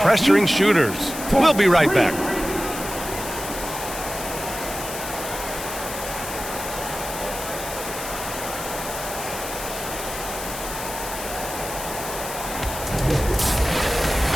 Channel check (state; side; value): noise; left; hiss, 8 dB below the sound